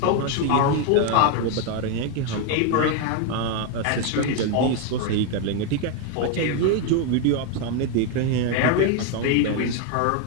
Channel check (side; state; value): both; different; correlation 0.01